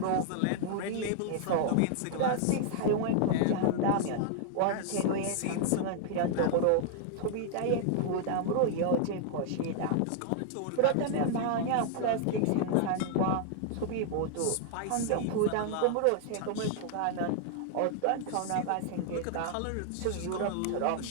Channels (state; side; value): different; both; correlation 0.00